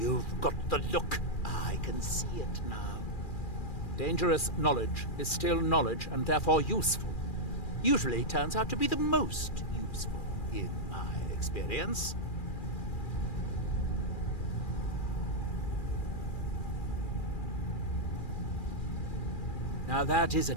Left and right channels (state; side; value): late; right; 2.4 ms